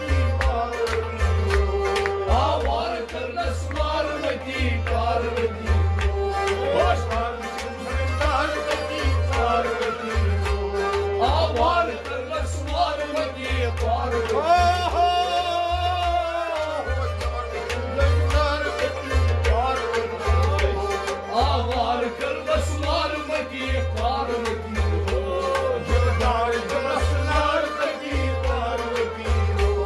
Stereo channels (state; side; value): identical; both; correlation 1.00